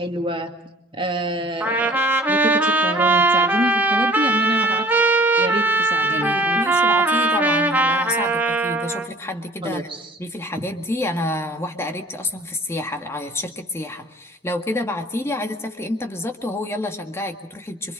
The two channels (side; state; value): both; normal; correlation 0.49